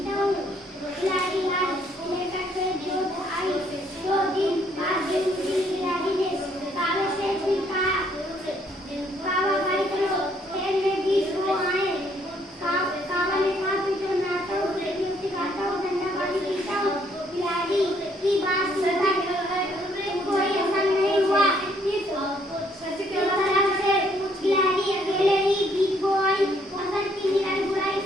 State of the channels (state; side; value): normal; both; correlation 0.67